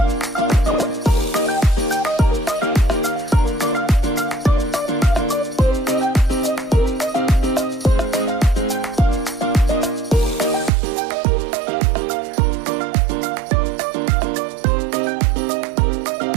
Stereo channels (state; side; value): drops out; left; at 10.7 s